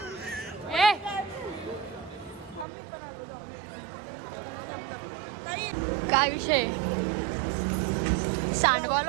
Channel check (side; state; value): left; drops out; at 2.7 s